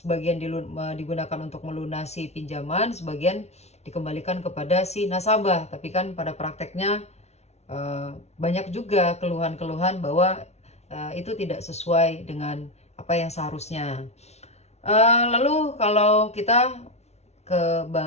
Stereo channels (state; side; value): late; right; 0.31 ms